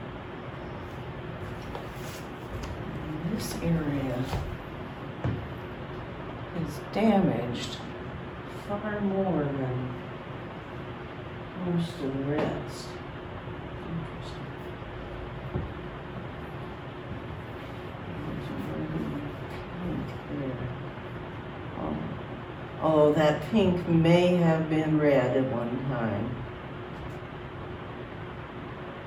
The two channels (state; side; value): identical; both; correlation 1.00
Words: This area is damaged far more than most of the rest. Interesting. Although that pink may have been red at one time.